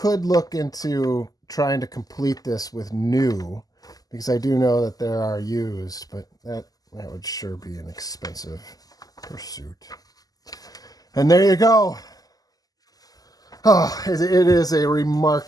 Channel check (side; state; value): right; late; 0.18 ms